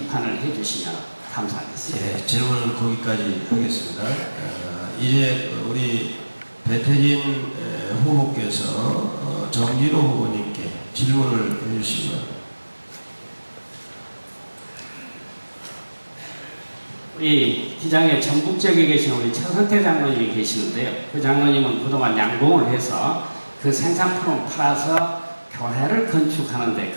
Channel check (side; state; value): both; inverted; correlation -1.00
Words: 해주시면 감사하겠습니다. 예, 질문은 거기까지 하겠습니다. 이제 우리 배태진 후보께서 정진호 후보님께 질문을 해주시면. 우리 기장의 전북 지역에 계신 우리 최선태 장로님이 계시는데요. 그 장로님은 그동안 양봉을 해서 그 생산품을 팔아서 교회를 건축하는데